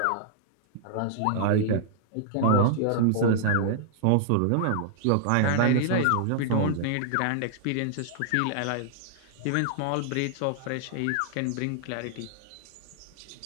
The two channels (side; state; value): both; different; correlation -0.01